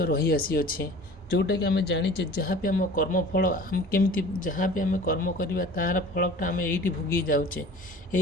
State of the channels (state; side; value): normal; both; correlation 0.43